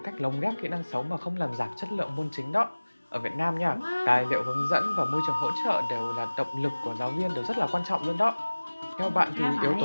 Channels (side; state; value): both; inverted; correlation -1.00